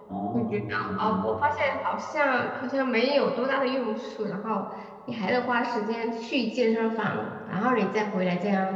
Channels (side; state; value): both; identical; correlation 1.00